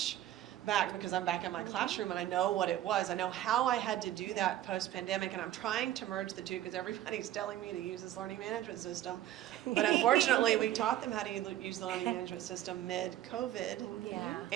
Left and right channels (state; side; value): quieter; left; 13.0 dB